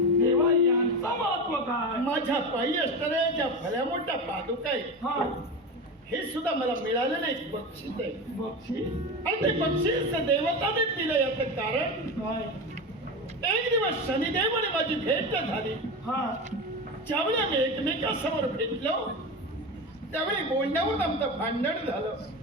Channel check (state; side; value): normal; both; correlation 0.23